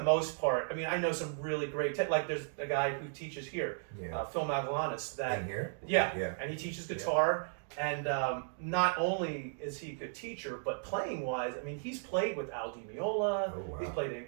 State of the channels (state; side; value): silent; left; digital silence